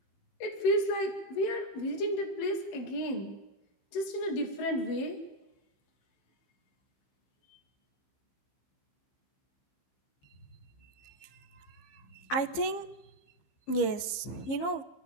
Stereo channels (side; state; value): right; late; 15 ms